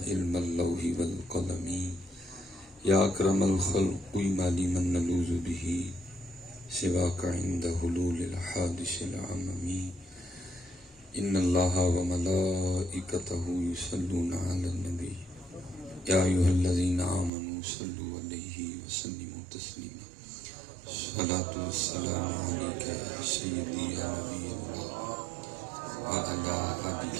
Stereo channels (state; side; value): drops out; left; at 17.3 s